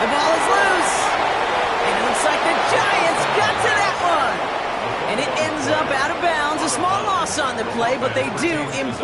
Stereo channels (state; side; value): identical; both; correlation 1.00